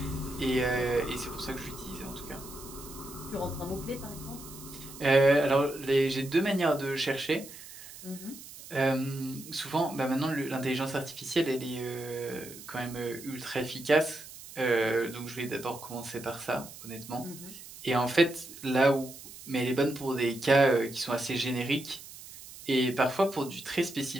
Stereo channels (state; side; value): noise; right; hiss, 15 dB below the sound